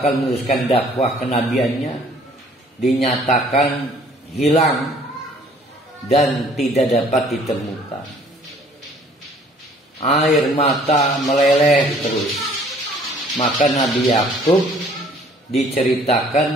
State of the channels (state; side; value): normal; both; correlation 0.56